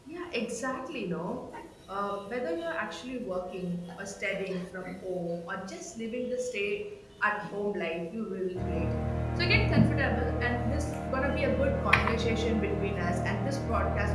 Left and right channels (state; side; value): identical; both; correlation 1.00